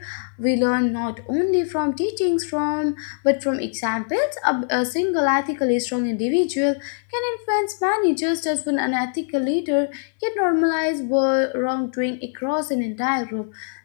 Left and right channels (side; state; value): right; silent; 64 dB below the other